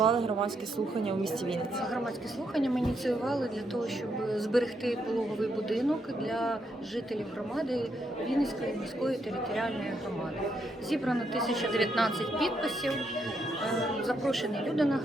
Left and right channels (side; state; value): both; normal; correlation 0.78